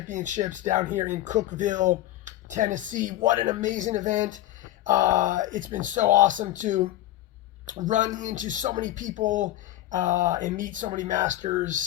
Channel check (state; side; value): quieter; right; 14.6 dB